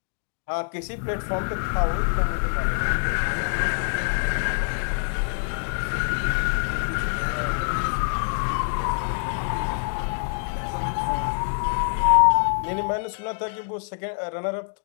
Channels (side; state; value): right; silent; digital silence